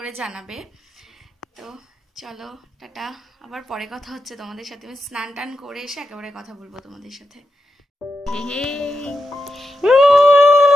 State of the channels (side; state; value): both; normal; correlation 0.86